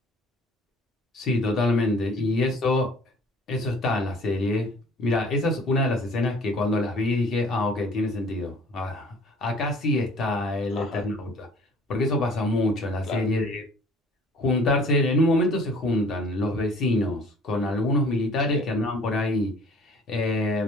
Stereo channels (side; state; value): both; normal; correlation 0.52